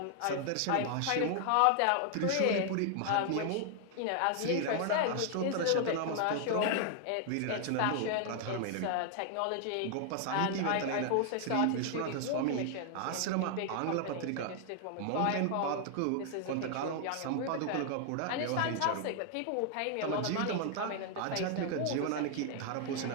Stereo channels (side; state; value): both; different; correlation 0.00